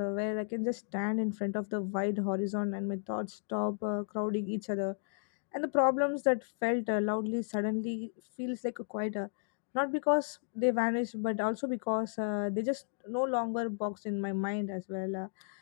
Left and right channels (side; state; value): right; silent; digital silence